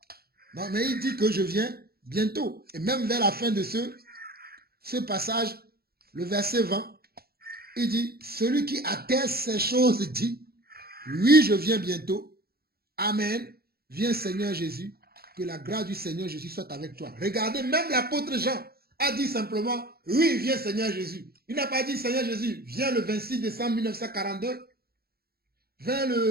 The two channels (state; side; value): late; left; 0.45 ms